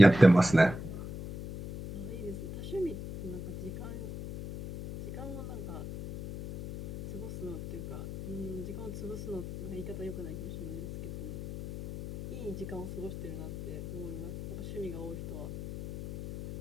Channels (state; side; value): noise; left; hum, 8 dB below the sound